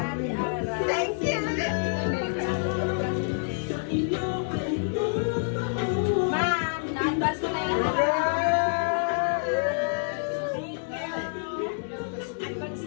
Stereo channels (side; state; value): right; silent; digital silence